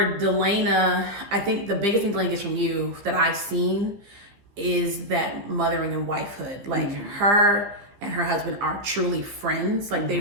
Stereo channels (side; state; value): left; late; 15 ms